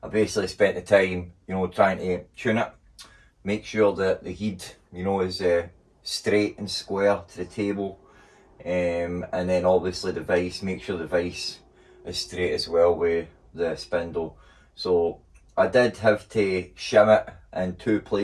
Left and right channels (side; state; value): both; identical; correlation 1.00